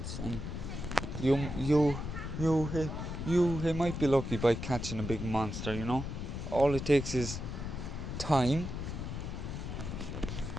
and you might be lucky by catching a big monster, you know. All it takes is time,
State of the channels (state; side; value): noise; left; rumble, 5 dB below the sound